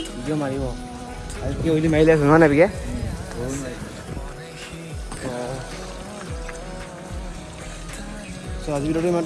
ভিডিঅ' মাৰিব। আজি কি অলি মাৰিলে আছে নহয় নাই বিকে? চ' আজি ভিডিঅ'টো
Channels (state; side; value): identical; both; correlation 1.00